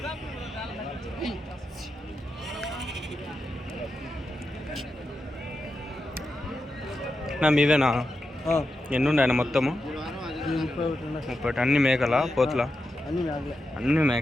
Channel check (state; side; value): normal; both; correlation 0.88